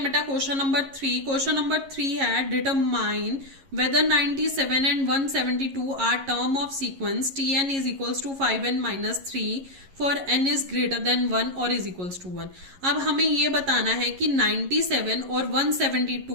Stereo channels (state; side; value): late; left; 11 ms